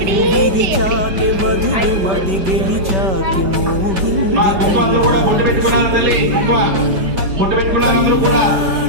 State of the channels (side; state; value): left; late; 5.2 ms